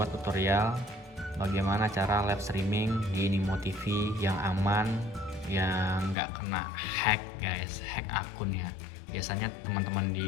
tutorial bagaimana cara live streaming di Nimo TV yang aman, yang nggak kena hack guys, hack akun ya. Biasanya teman-teman di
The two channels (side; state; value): right; drops out; at 6.2 s